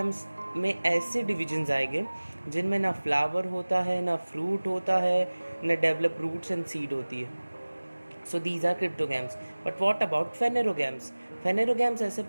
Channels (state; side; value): inverted; both; correlation -1.00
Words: में ऐसे डिविजन्स आएंगे जिनमें ना फ्लावर होता है, ना फ्रूट होता है, ना डेवलप रूट्स एंड सीड होती है. So these are cryptogams. But what about phanerogams? Phanerogams ऐसे